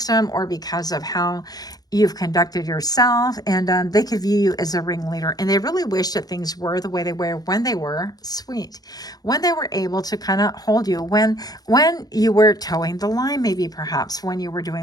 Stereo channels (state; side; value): late; right; 0.19 ms